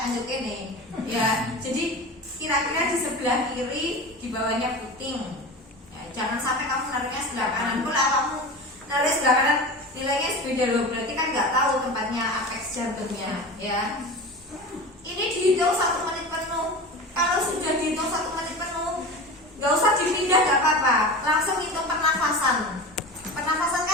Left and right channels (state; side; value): normal; both; correlation 0.31